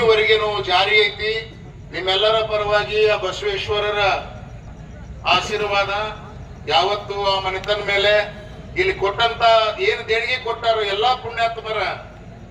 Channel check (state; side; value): identical; both; correlation 1.00